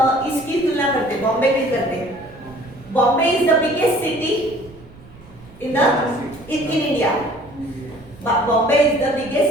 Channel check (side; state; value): right; noise; rumble, 22 dB below the sound